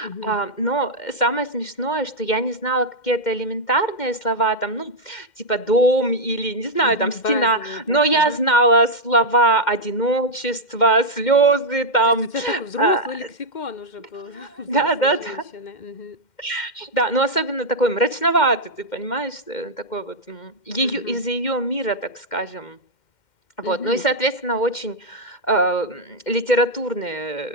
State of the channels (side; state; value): right; late; 2.1 ms